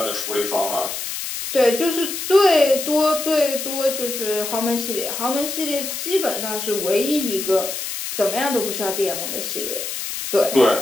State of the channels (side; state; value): left; noise; hiss, 5 dB below the sound